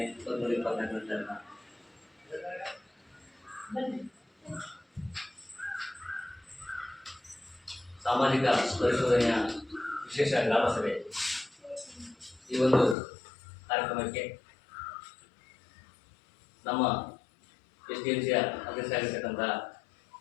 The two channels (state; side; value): drops out; right; at 13.0 s